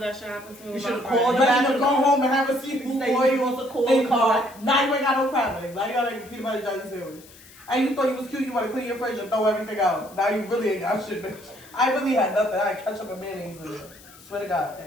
that shit happened to me. You with should've my called friend. You ready to go home and have a You seafood say boil you want to call in the car. car. Now you ain't got no crab legs. Now you gotta make a peanut butter jelly sandwich. And you thought you was cute, you wanna clean your fridge and throw everything out. Now you really ain't got shit, bitch. I really had nothing. I had ketchup and mayonnaise in it. Swear to God,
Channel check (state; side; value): noise; left; hiss, 22 dB below the sound